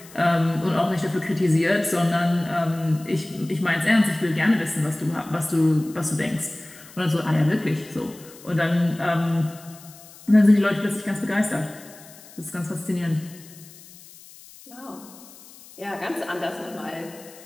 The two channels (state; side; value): noise; left; hiss, 21 dB below the sound